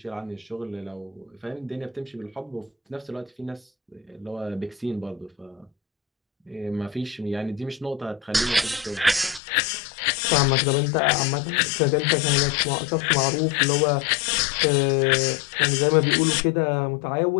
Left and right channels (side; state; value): right; drops out; at 9.4 s